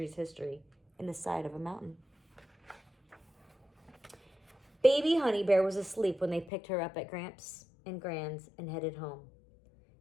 history in the side of a mountain. Baby Honey Bear was asleep when they picked her up at Gramps and Gran's and headed home.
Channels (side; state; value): right; drops out; at 6.5 s